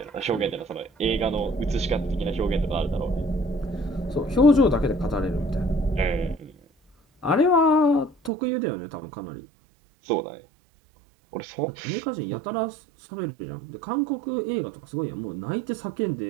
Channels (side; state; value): left; drops out; at 8.3 s